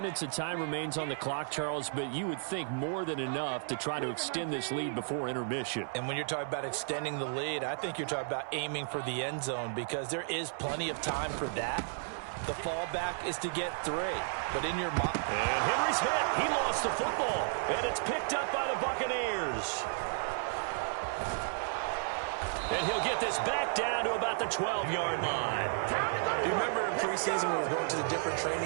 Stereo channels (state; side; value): silent; left; 56 dB below the other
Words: of time remains on the clock, Charles, but you would think more than enough to try to extend this lead before intermission. And when you're talking about extending the lead, I think you're talking about aiming for the end zone because there is plenty of time for that. The fallback is to get 3. But in your mind... And Henry's hit. He lost the football. And it's picked up by the Buccaneers. And he'll get this back down to about the 12-yard line. Do you remember in preseason we were going to the different